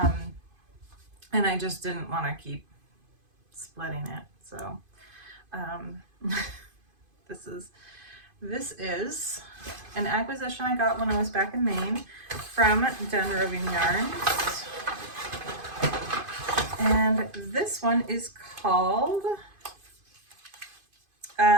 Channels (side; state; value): left; late; 2.5 ms